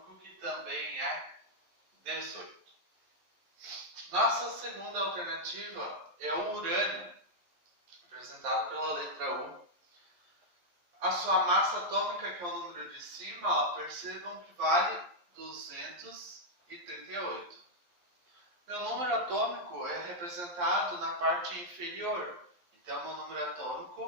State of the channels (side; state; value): left; late; 11 ms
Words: que também é 18. Nossa segunda alternativa é o urânio, representado pela letra U. A sua massa atômica, que é o número de cima, percebam que vale 238. Meu número atômico é representado na parte inferior. Então, meu número